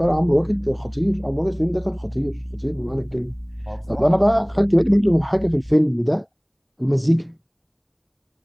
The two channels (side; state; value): both; identical; correlation 1.00